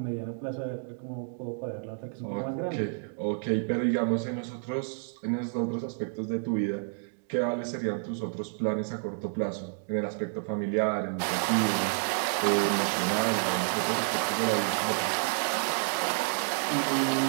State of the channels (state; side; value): silent; left; digital silence